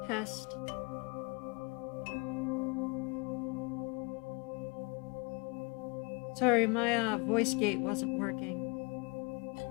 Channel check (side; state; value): right; quieter; 30.0 dB